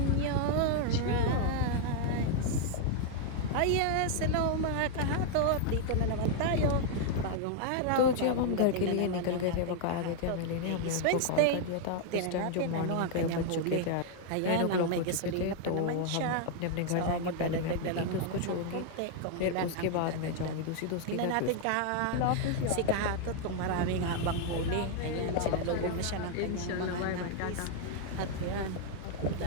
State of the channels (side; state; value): both; different; correlation 0.00